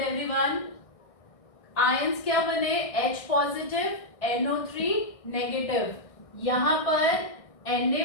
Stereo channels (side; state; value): right; late; 1.6 ms